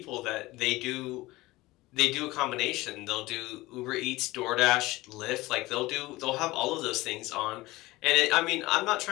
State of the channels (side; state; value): right; quieter; 19.5 dB